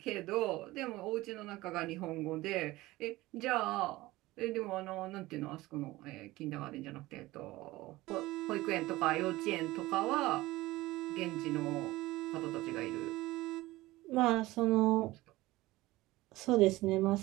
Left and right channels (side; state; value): left; quieter; 18.8 dB